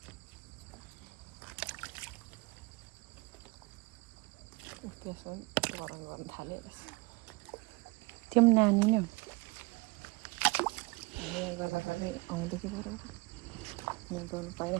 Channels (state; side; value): quieter; left; 25.9 dB